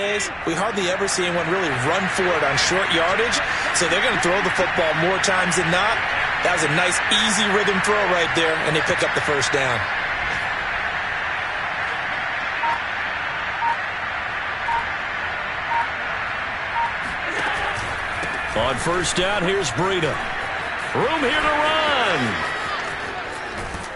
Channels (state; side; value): identical; both; correlation 1.00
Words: we hardly ever see anyone really run for it on short yardage. So they're going to throw the football more times than not. That was a nice, easy rhythm throw right there, and they pick up the 1st down. On 1st down, here's Breida. Room here to run.